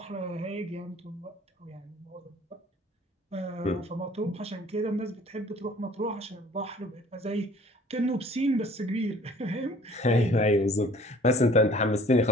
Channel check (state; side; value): normal; both; correlation 0.52